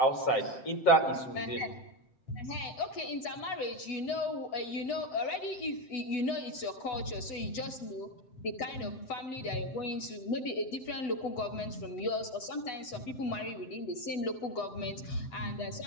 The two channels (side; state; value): right; late; 7.8 ms